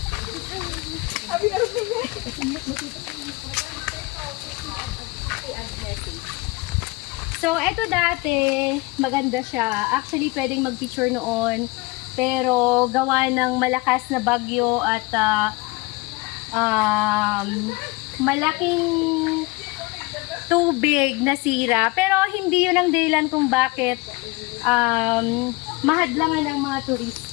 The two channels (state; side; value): quieter; right; 24.6 dB